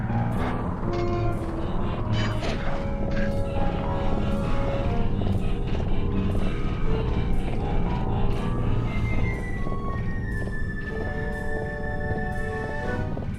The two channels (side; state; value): both; identical; correlation 1.00